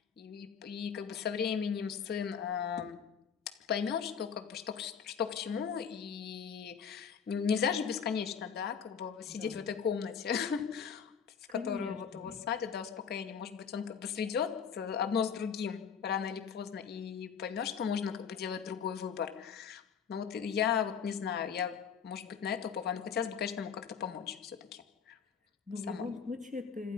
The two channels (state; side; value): quieter; right; 7.0 dB